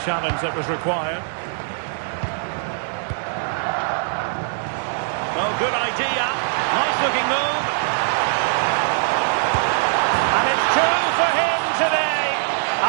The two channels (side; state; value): left; silent; 64 dB below the other